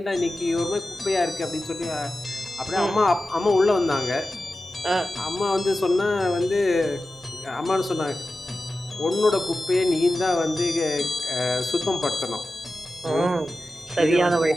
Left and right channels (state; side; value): normal; both; correlation 0.94